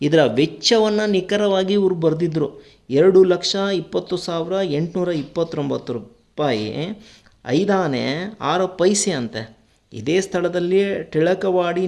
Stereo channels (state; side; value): identical; both; correlation 1.00